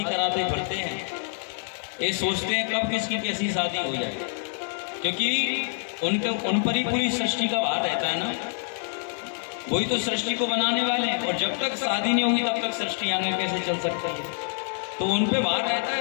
कराते फिरते हैं। ये सोचते हैं कब किसकी कैसी शादी हो जाए, क्योंकि उन पर ही पूरी सृष्टि का भार रहता है ना। वही तो सृष्टि को बनाने वाले हैं, और जब तक शादी नहीं होगी तब तक सृष्टि आगे कैसे चल सकती है। तो उन पे भार रहता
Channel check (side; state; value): right; silent; digital silence